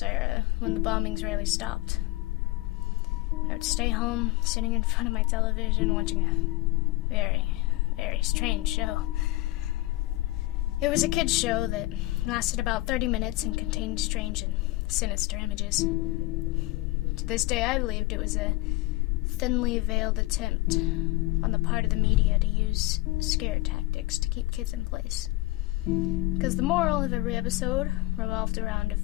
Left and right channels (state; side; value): quieter; right; 19.6 dB